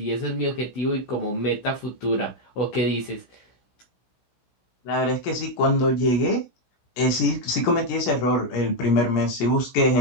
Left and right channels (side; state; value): right; late; 17 ms